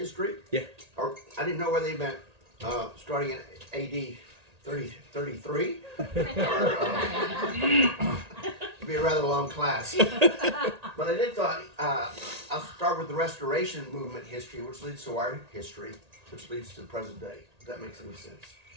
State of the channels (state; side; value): late; left; 1.8 ms